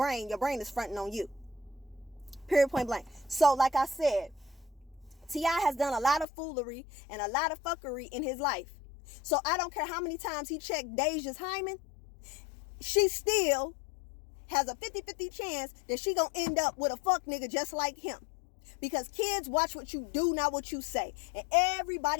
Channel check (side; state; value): right; drops out; at 6.2 s